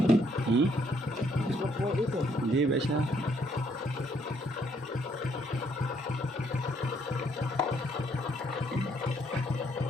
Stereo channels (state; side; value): normal; both; correlation 0.69